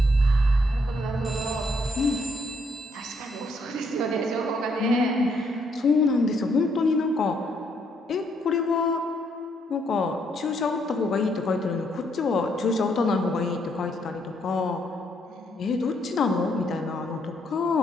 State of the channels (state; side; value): normal; both; correlation 0.72